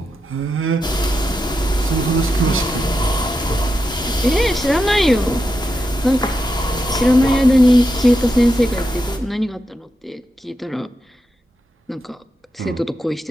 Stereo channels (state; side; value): normal; both; correlation 0.87